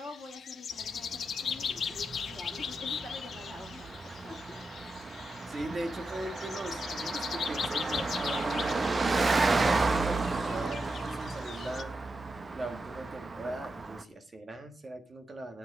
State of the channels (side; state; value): both; normal; correlation 0.87